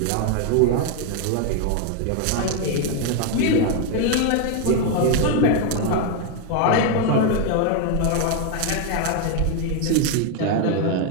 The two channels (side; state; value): both; different; correlation 0.01